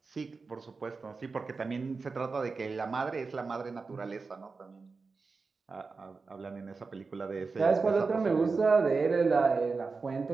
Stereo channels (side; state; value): left; quieter; 4.4 dB